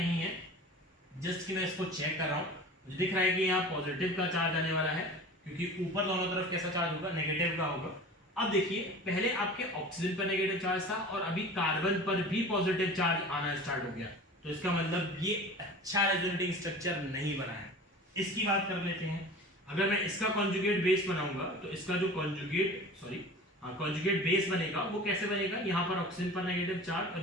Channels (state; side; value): normal; both; correlation 0.38